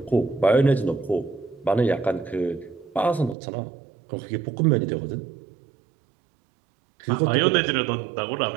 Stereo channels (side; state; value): left; drops out; at 3.4 s